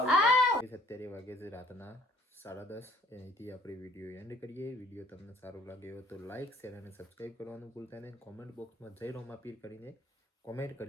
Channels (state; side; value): normal; both; correlation 0.58